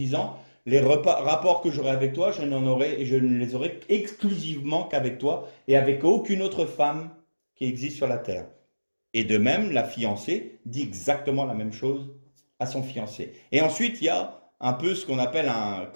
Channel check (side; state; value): both; inverted; correlation -1.00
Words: les rapports que j'aurai avec toi, je ne les aurai exclusivement qu'avec toi et avec aucune autre femme qui existe sur la terre. Et de même, la fiancée dit exactement la même chose à son fiancé. Et ensuite, il y a un peu ce qu'on appelle un